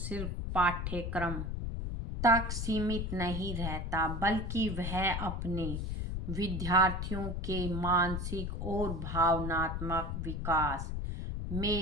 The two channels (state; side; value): noise; left; rumble, 3 dB below the sound